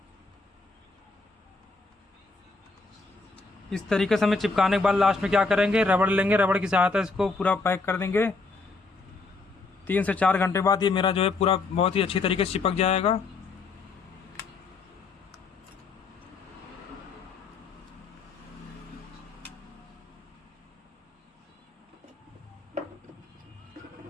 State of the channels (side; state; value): right; quieter; 3.9 dB